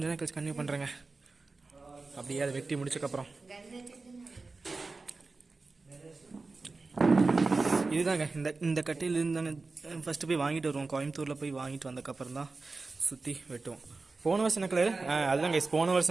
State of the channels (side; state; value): left; quieter; 3.8 dB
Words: நேரம் கழிச்சு கன்டினியூ பண்ணுறேங்க. அப்படியே அதை வெட்டி முடிச்சக்கப்புறம் இதுதாங்க இந்த கட்டையிலேருந்து தாங்க ஃபஸ்ட்டு போய் வாங்கிட்டு வருவோம். கோயம்புத்தூரில் போய் வாங்கிட்டு வந்ததுக்கப்புறம் தான் சுற்றி வெட்டுவோம். போன வருஷம் என்ன கலர்? அதுதான் கைஸ், போன